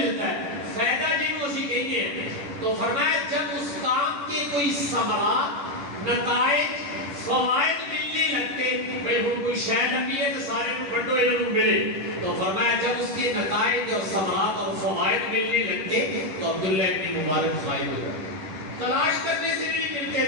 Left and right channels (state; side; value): late; left; 10 ms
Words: ہے، فائدہ جن اسی کہتے ہیں۔ تو فرمایا جب اس کام کے کوئی ثمرات، نتائج، فوائد ملنے لگتے، بھئی ہم کوئی شاید نبی ہے تو سارے کو بڑھو انہوں ملے، تو فرمایا جب اس کے نتائج اور ثمرات اور فوائد ملنے لگتے تو عبداللہ ابن مبارک غائب ہو جاتے، تلاش کرنے سے نہیں ملتے